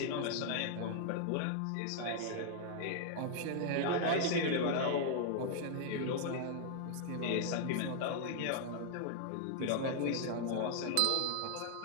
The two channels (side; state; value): both; different; correlation -0.01